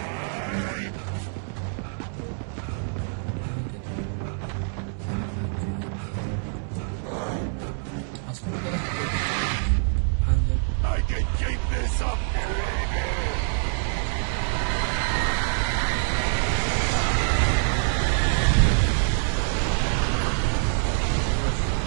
I can keep this up.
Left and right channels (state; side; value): silent; left; 61 dB below the other